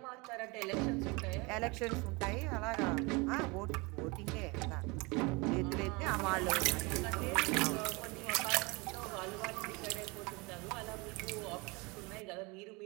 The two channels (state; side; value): quieter; left; 26.9 dB